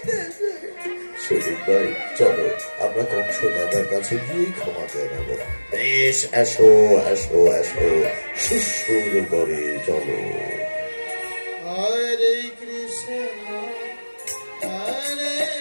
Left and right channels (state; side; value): inverted; both; correlation -1.00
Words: সৈনিক ভাই, চলো আমরা কংস দাদার কাছে গিয়ে ক্ষমা চেয়ে নেব। বেশ, এসো এসো এসো, সুর করে চলো। হরে কৃষ্ণ হরে